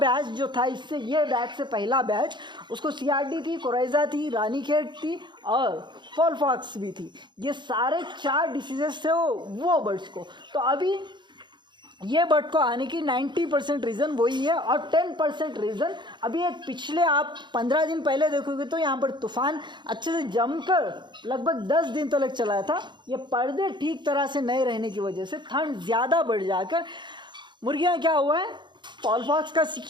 जो था, इससे ये बैच से पहला बैच, उसको CRD थी, कोराइजा थी, रानीखेत थी और फॉलफॉक्स भी थी। ये सारे 4 डिसीजेस थे वो बर्ड्स को। तो अभी ये बर्ड को आने की 90% रीज़न वही है। और 10% रीज़न अभी एक पिछले आप 15 दिन पहले देखोगे तो यहाँ पर तूफान अच्छे से जमकर लगभग 10 दिन तक चला था। ये पर्दे ठीक तरह से नहीं रहने की वजह से ठंड ज़्यादा बढ़ जाकर मुर्गियाँ क्या हुआ है, फॉलफॉक्स का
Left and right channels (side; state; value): left; late; 0.22 ms